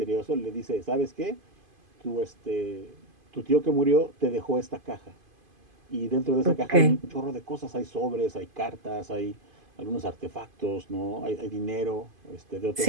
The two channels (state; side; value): late; left; 2.5 ms